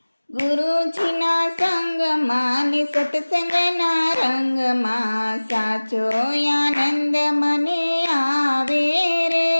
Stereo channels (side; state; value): both; inverted; correlation -1.00